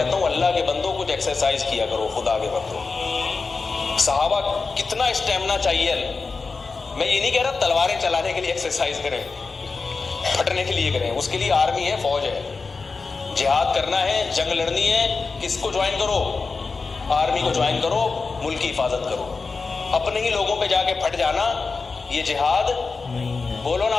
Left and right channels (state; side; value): quieter; right; 4.3 dB